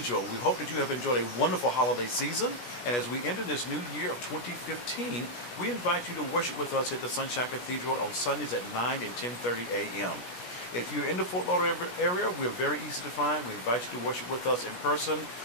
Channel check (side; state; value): right; late; 17 ms